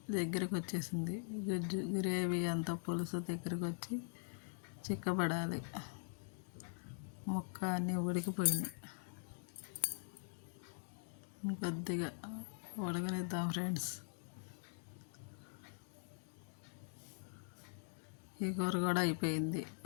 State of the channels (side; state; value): right; silent; digital silence